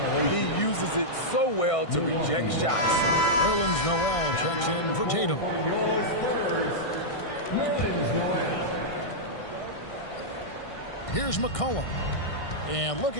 He uses it so well to reject shots. Nerlens Noel checks in for Tatum. Your Spurs, Nerlens Noel. Here's McCollum. And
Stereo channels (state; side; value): late; right; 1.6 ms